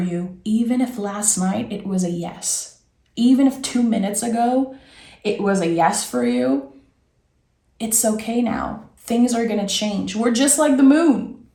even if last night it was a yes. Even if 2 minutes ago it was a yes for you, it's okay now. Things are going to change. We're just like the moon.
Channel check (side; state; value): both; identical; correlation 1.00